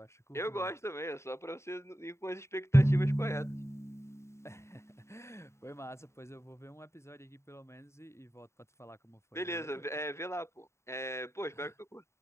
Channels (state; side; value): late; right; 0.13 ms